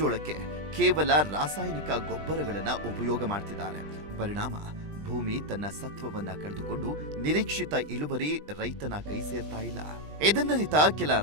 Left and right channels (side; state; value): left; late; 20 ms